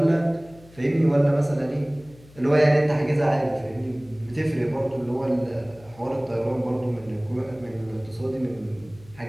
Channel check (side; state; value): left; noise; hum, 24 dB below the sound